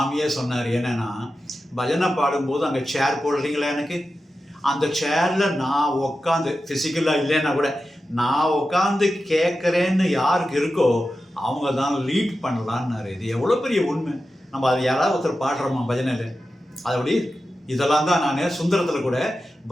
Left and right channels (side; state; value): both; normal; correlation 0.92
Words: சொன்னார். என்னென்னா, பஜனை பாடும்போது அங்கே சேர் போடுறீங்களா, எனக்கு அந்த சேரில் நான் உட்காந்து, ஃபிசிக்கலாக இல்லைன்னா கூட நான் உட்காந்து கேட்குறேன்னு யாருக்கு இருக்கோ அவங்க தான் லீட் பண்ணலான்னாரு. இது எவ்வளோ பெரிய உண்மை. நம்ம அது யாராவது ஒருத்தர் பாடுறோமா பஜனையில்? அதபடி இதெல்லாம் தான் நான் சுந்தரத்தில் கூட